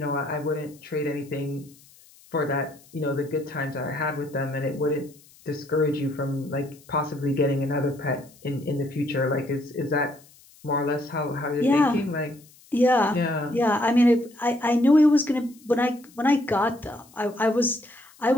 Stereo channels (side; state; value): left; noise; hiss, 26 dB below the sound